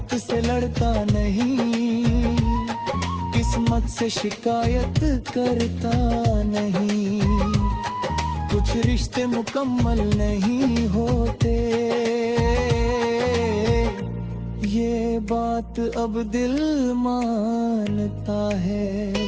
से लड़ता नहीं, किस्मत से शिकायत करता नहीं। कुछ रिश्ते मुकम्मल नहीं होते, ये बात अब दिल मानता है।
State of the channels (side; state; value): both; identical; correlation 1.00